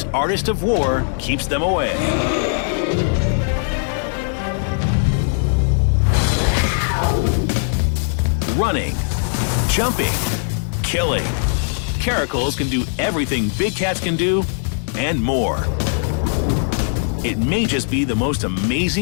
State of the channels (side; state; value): right; silent; digital silence